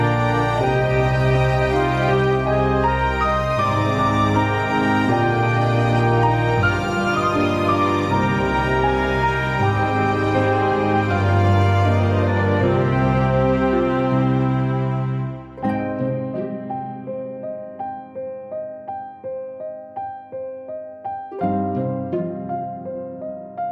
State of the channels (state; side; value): identical; both; correlation 1.00